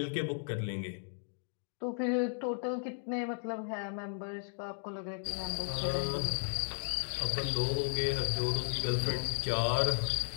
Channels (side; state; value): right; silent; digital silence